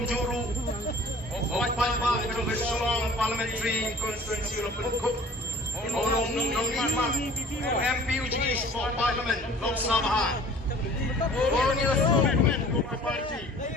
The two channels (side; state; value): both; normal; correlation 0.48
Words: Juru Opal Kedung Sulong Parliamentary Constituency Lopen Cook Nong Lima MP Uji East for Parliament Lok Sabha Borneo Movement Joko Parti